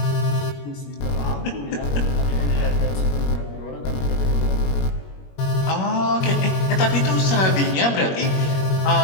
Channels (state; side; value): late; right; 21 ms